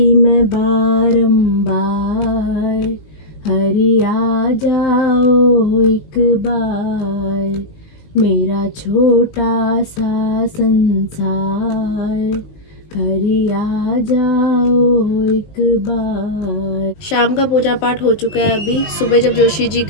मैं बारंबार, हरि आ जाओ एक बार, मेरा छोटा सा संसार, हरि आ जाओ एक बार। शाम का पूजा पाठ हो चुका है। अभी सुबह जब जोशी जी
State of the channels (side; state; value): right; late; 19 ms